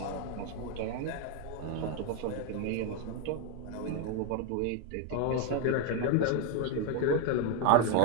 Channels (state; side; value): different; both; correlation 0.02